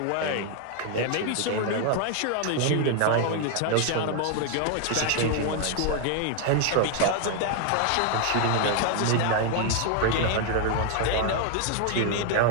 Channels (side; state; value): both; different; correlation 0.00